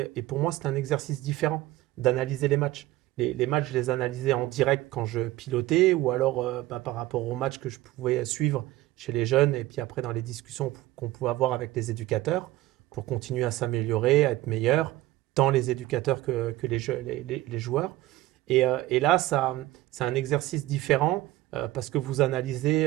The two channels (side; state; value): left; quieter; 16.5 dB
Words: pour moi, c'était un exercice différent d'analyser les matchs. Les matchs, je les analysais en direct quand je pilotais ou alors par rapport aux matchs que je pouvais suivre chez les jeunes et puis après dans les discussions qu'on pouvait avoir avec les éducateurs pour continuer à s'améliorer, à être meilleur, tant les éducateurs que les joueurs. Et là, c'est un exercice différent parce que vous